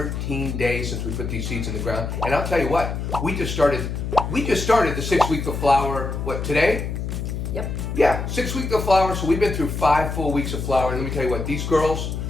days since we put these seeds in the ground. And I'll tell you what, we just started the 6th week of flower. What, today? Yep. Yeah, 6th week of flower. So we've been through 5 full weeks of flower. And let me tell you what, these girls,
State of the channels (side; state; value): left; noise; hum, 4 dB below the sound